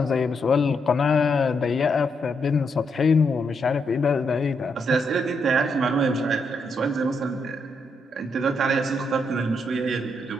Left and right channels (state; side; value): normal; both; correlation 0.79